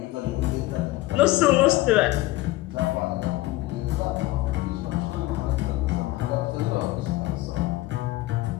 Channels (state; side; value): quieter; right; 18.2 dB